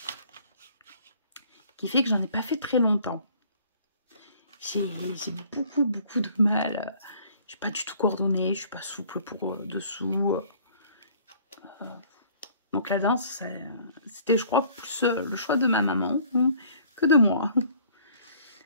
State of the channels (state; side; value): inverted; both; correlation -0.55